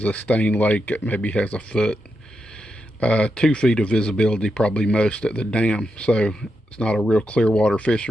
a stained lake that maybe has a foot, 2 feet of visibility probably most at the dam, so it's not a real clear water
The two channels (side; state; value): both; normal; correlation 0.85